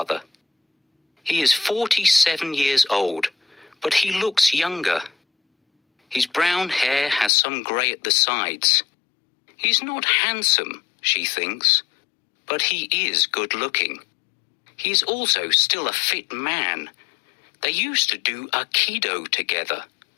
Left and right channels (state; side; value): drops out; right; at 7.3 s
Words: He is 47 years old, but he looks younger. His brown hair has some grey at the sides. He's not handsome, she thinks, but he is good-looking. He is also still a fit man. They used to do Aikido together,